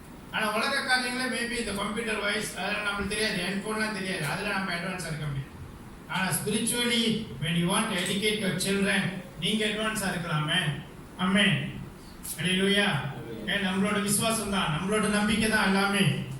ஆனால் உலக காரியங்களில் மேபி இந்த கம்ப்யூட்டர் வைஸ் அதெல்லாம் நம்மளுக்கு தெரியாது, ஹெட்ஃபோன்லாம் தெரியாது, அதில் நம்ம அட்வான்ஸாக இருக்க முடியும். ஆனால் spiritually when you want to educate your children நீங்கள் அட்வான்ஸாக இருக்கலாமே. ஆமென். அல்லேலூயா. நம்மளோட விசுவாசம் தான், நம்மளோட நம்பிக்கை தான் எல்லாமே.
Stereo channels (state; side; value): identical; both; correlation 1.00